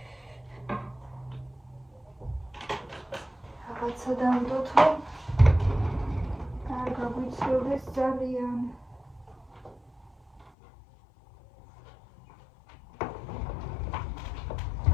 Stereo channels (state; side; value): drops out; right; at 10.5 s